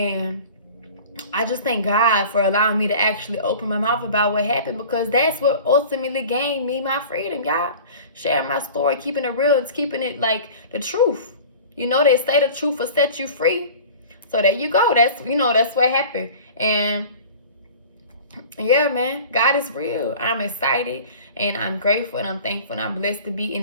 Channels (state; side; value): inverted; both; correlation -0.41